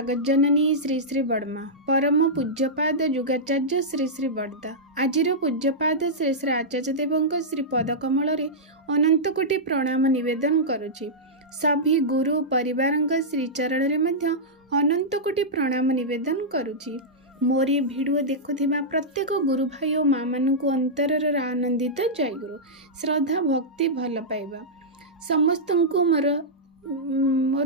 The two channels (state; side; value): normal; both; correlation -0.11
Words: श्री श्री बड़मा परम पूज्यपाद जुगाचार्य श्री श्री बड़दा आजिर पूज्यपाद श्री श्री आचार्य देवଙ୍କ श्री पदकमल अनंत कोटि प्रणाम निवेदन करुछि। सभी गुरु परिवार श्रीचरण में अनंत कोटि प्रणाम निवेदन करुछि। मोर ये भिडियो देखुथिबा प्रत्येक गुरु भाई और माँ मानक अंतरर आनंदित जय गुरु श्रद्धा भक्ति भल पाइबा समस्त को